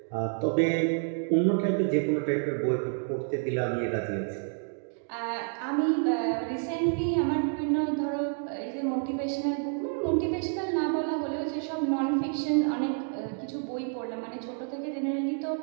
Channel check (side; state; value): left; silent; 58 dB below the other